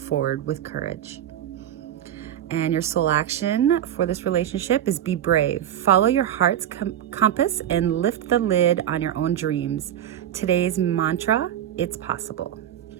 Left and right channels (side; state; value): left; quieter; 11.0 dB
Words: with courage. And your soul action for this relationship is be brave. Follow your heart's compass and lift the lid on your own dreams. Today's mantra, it's possible.